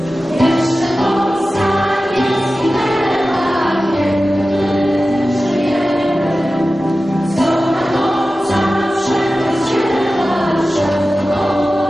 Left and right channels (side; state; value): both; normal; correlation 0.95